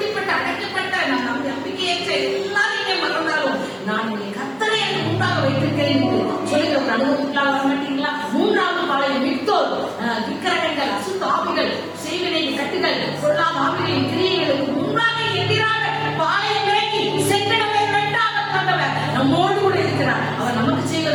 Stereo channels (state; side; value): identical; both; correlation 1.00